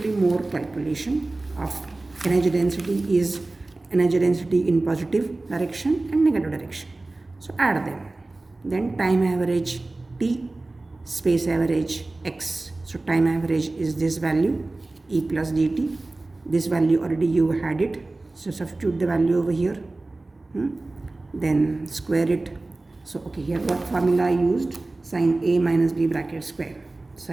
more calculation of energy density is energy density in positive direction and negative direction. So add them. Then time average T, space average x. So time average is this value E plus dt. This value already you had it. So substitute the value over here. Then square it. So okay, here what formula I used? Sin A minus B bracket square.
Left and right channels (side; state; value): left; quieter; 3.1 dB